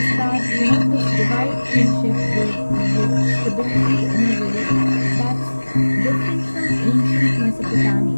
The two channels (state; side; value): inverted; both; correlation -1.00